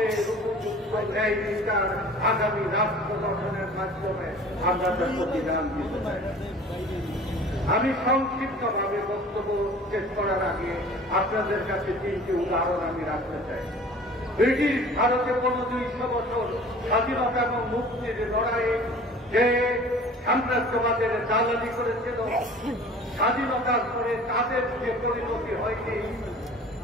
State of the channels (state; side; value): normal; both; correlation 0.45